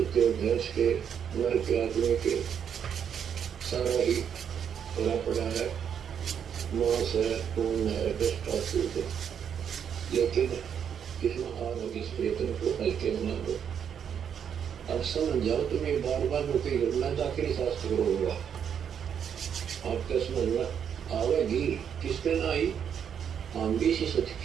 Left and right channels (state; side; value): quieter; left; 8.1 dB